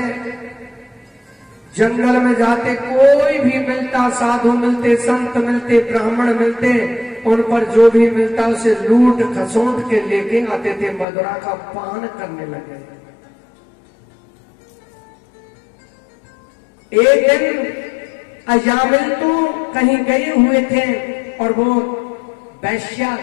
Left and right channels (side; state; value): right; drops out; at 11.1 s